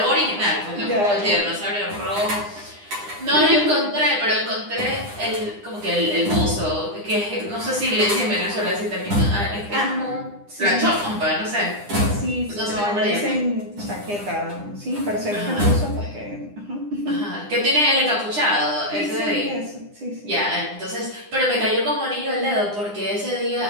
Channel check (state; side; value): late; left; 9.8 ms